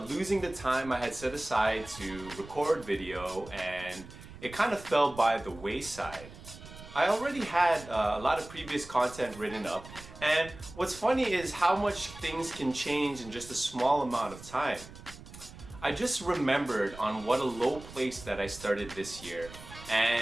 losing the time I had set aside to record video, and it kind of fell by the wayside. I already had a lot of previous content written up, and what's funny is how much things can change in just a small amount of time. I just remembered on what a low place that I started this year,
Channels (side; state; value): right; noise; rumble, 16 dB below the sound